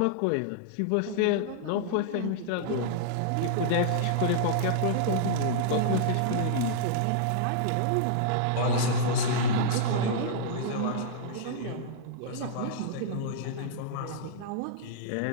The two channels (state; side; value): different; both; correlation -0.01